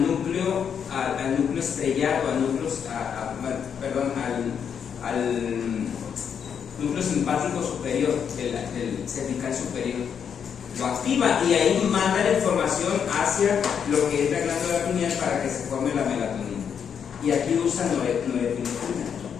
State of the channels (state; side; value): quieter; right; 7.5 dB